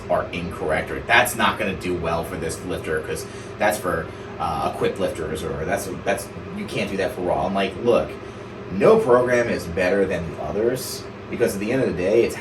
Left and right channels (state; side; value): identical; both; correlation 1.00